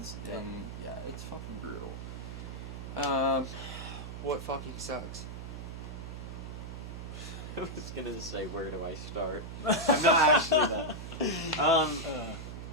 and it's fucking brutal. What fucking sucks? I was gonna say, where do I start? I'm not actually that. I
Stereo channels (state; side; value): noise; right; hum, 8 dB below the sound